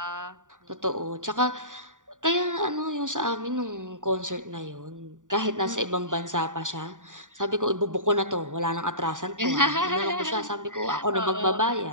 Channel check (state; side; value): late; left; 0.87 ms